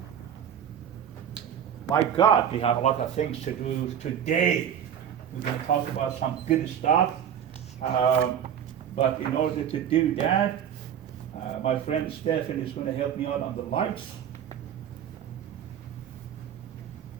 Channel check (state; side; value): quieter; left; 9.1 dB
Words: My God, we have a lot of things to do today. We're going to talk about some good stuff. But in order to do that, my friend Stephen is going to help me out on the lights.